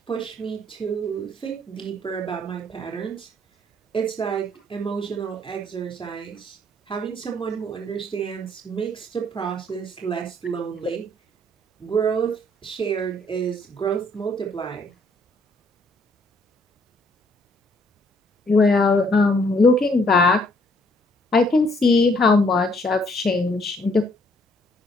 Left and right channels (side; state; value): both; normal; correlation 0.65